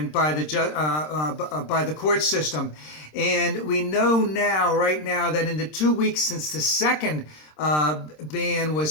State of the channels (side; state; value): right; late; 26 ms